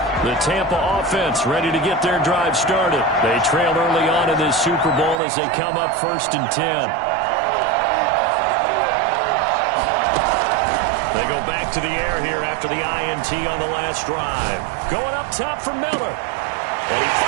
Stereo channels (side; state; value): left; drops out; at 5.2 s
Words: The Tampa offense ready to get their drive started. They trailed early on in this Super Bowl as they come up 1st and 10. They go back to the air here after the INT on the last drive. Going up top for Miller. And he